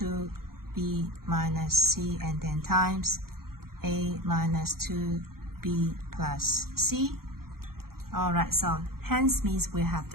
minus c, and then times a minus 2b plus c. Alright, so hence means we have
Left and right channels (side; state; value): left; late; 0.93 ms